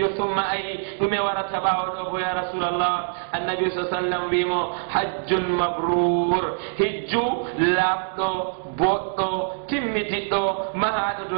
summa ayi ɗume warata ɓawa ɗo go ya rasulallah annabi sa sallam wimo hajjun mabrur hijju laabɗo boɗɗo timmitiɗɗo mahaɗo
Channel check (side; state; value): left; silent; 63 dB below the other